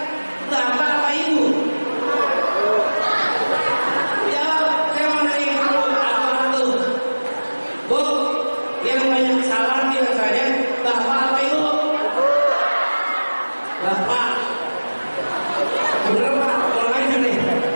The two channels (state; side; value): inverted; both; correlation -1.00